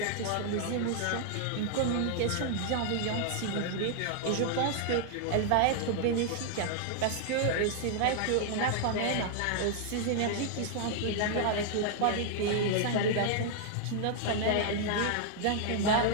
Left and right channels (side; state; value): both; different; correlation -0.01